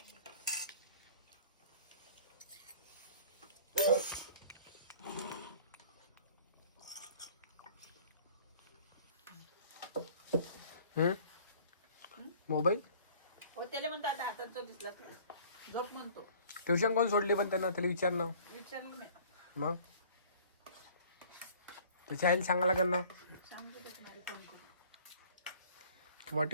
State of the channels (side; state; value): both; inverted; correlation -0.50